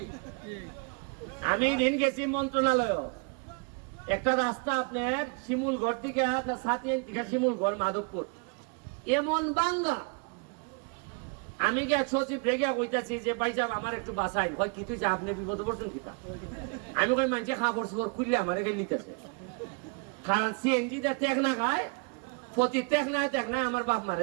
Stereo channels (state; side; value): quieter; left; 34.4 dB